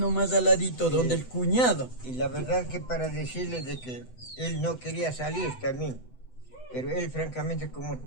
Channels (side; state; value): right; late; 7.9 ms